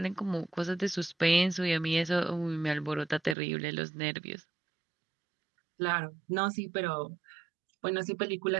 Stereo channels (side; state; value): left; drops out; at 3.4 s